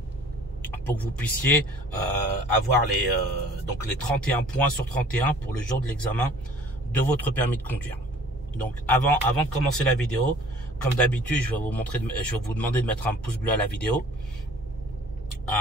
pour que vous puissiez avoir les 31 points sur 31 pour le jour de l'examen de votre permis de conduire. Donc avant de commencer la vidéo, comme d'habitude, je vais vous demander de mettre un pouce bleu à la vidéo,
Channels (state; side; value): normal; both; correlation 0.51